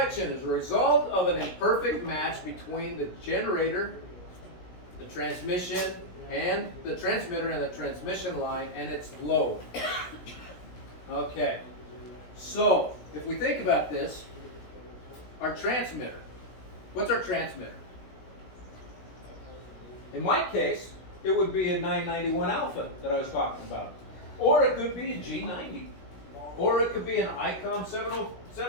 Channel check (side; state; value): right; late; 16 ms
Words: is a result of an imperfect match between the generator, the transmission, and the transmitter and the transmission line and its load. Okay. So if we think about this, our transmitter. What's our transmitter? In my case, it would be a 991 alpha that I was talking about. Or it could be a G90. Or it could be an ICOM